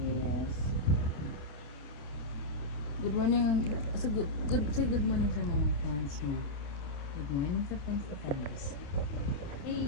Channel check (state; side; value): late; right; 27 ms